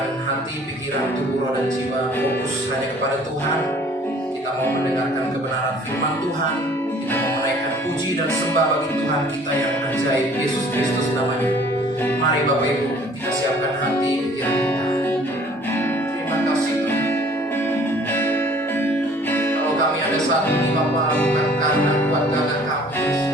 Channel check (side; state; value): both; normal; correlation 0.54